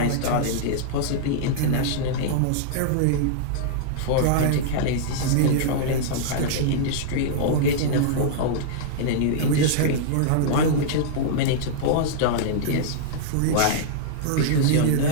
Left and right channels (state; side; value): different; both; correlation -0.02